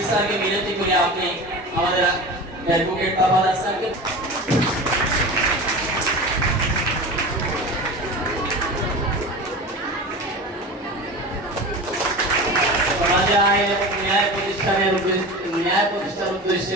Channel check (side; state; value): both; normal; correlation 0.31